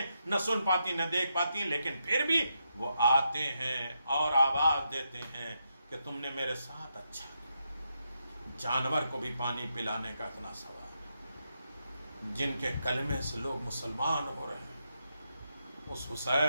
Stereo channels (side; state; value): both; inverted; correlation -0.83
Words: نہ سن پاتی نہ دیکھ پاتی ہیں، لیکن پھر بھی وہ آتے ہیں اور آواز دیتے ہیں کہ تم نے میرے ساتھ اچھا کیا. جانور کو بھی پانی پلانے کا اتنا ثواب ہے. جن کے کلمے سے لوگ مسلمان ہو رہے ہیں، اس